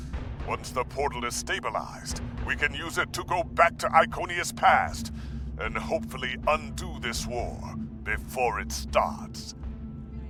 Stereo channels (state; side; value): identical; both; correlation 1.00